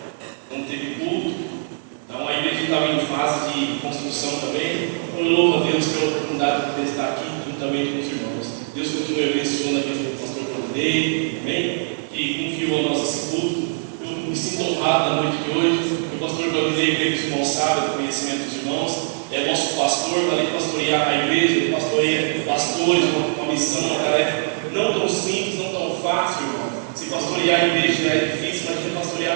Não teve culto. Então a igreja estava em fase de construção também. Então eu louvo a Deus pela oportunidade de poder estar aqui juntamente com os irmãos. Deus continue abençoando a vida do pastor Claudinei, amém? Que confiou a nossa culto. Eu me sinto honrado na noite de hoje. O pastor Claudinei, que é responsável pelo conhecimento dos irmãos, é nosso pastor, além de pastorear a igreja, ele pastoreia pastores, uma missão, uma tarefa não tão simples, não tão fácil, irmão. Se pastorear a igreja já é difícil, imagina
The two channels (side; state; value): left; silent; digital silence